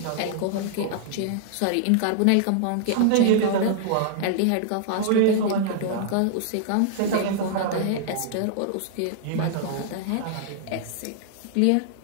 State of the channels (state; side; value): different; both; correlation -0.01